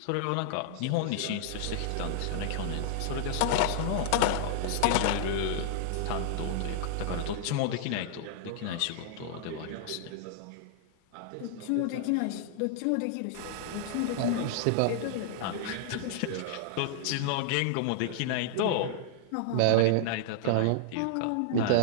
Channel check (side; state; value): both; different; correlation -0.01